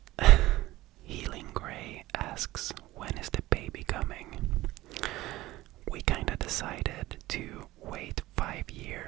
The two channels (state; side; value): quieter; left; 17.4 dB